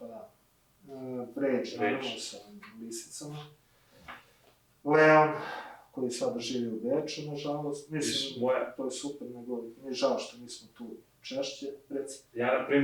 da. Pređe, naravno, sa lisicama. Leon, koji sada živi u Beču, nažalost. Mislim, to je super, nego mi je žao što nismo tu češće, reci. Ja, na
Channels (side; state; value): both; identical; correlation 1.00